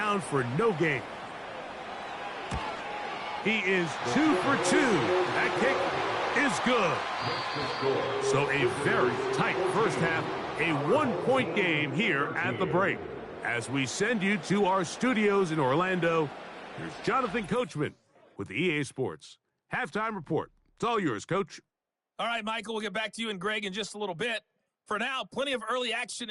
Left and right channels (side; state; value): both; identical; correlation 1.00